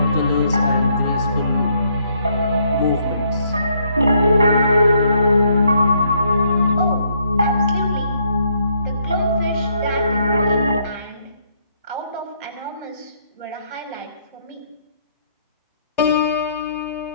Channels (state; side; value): inverted; both; correlation -0.70